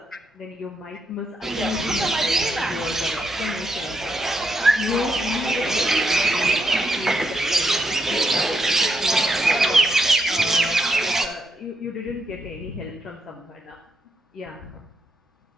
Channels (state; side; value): normal; both; correlation 0.79